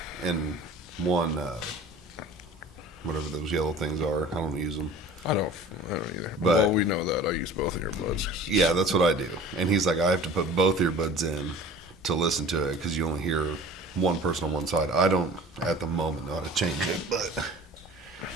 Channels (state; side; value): normal; both; correlation 0.43